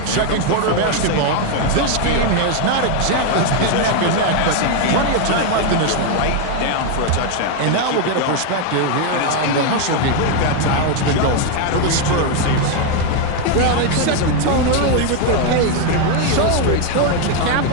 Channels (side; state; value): both; different; correlation 0.01